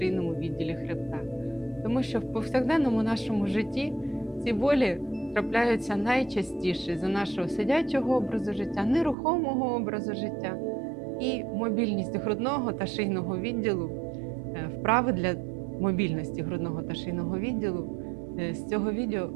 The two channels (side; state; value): left; drops out; at 9.2 s